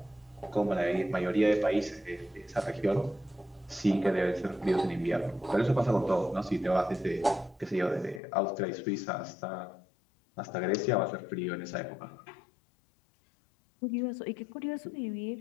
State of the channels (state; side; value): drops out; right; at 8.2 s